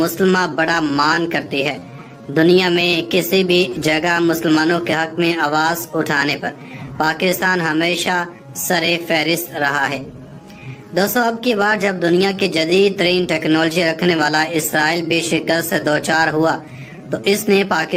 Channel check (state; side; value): identical; both; correlation 1.00